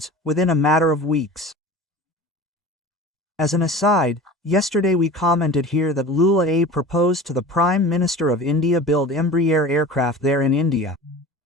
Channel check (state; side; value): normal; both; correlation 0.36